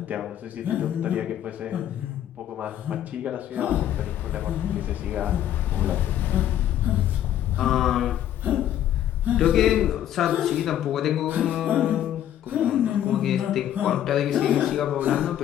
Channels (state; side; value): quieter; right; 11.2 dB